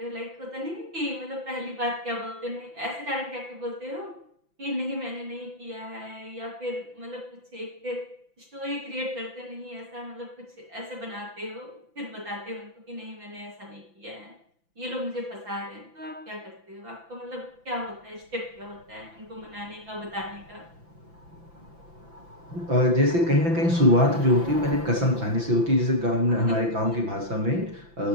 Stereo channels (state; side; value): late; left; 5.9 ms